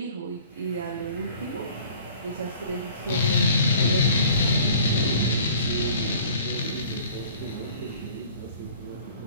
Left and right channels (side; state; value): both; inverted; correlation -0.50